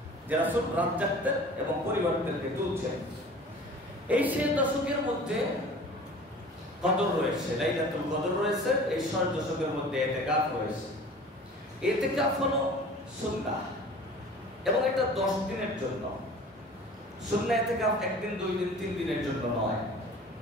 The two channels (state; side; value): normal; both; correlation 0.43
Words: যে রাসূল রাত জাগতেন এবং পরিবারদেরকে তুলছেন। এই শেষ দশকের মধ্যে কদর রয়েছে, লাইলাতুল কদর রয়েছে। এই শেষ দশকের মধ্যে ইতিকাফ রয়েছে। ইতিকাফ হলো সুন্নাহ এবং এটা 10 দিনের জন্য। সুন্নাহ ইতিকাফ একদিন, 2 দিন, 3 দিনের জন্য নয়।